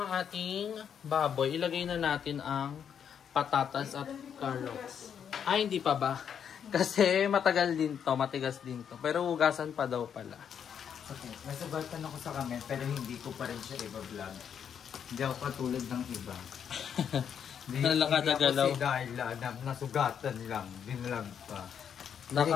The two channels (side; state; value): right; quieter; 8.1 dB